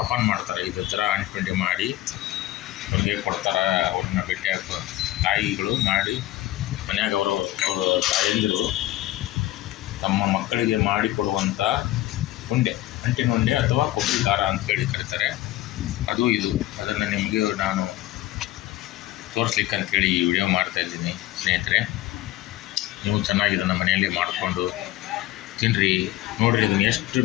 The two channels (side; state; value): right; quieter; 15.7 dB